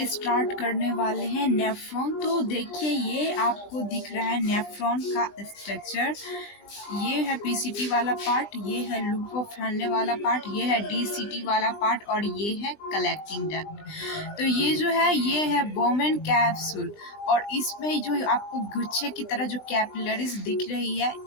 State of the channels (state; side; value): late; right; 20 ms